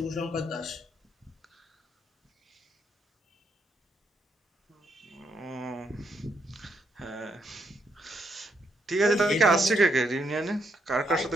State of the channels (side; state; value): both; normal; correlation 0.76